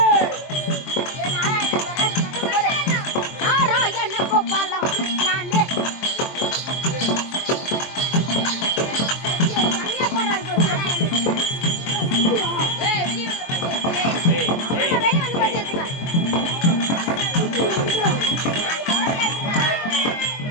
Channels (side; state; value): right; late; 23 ms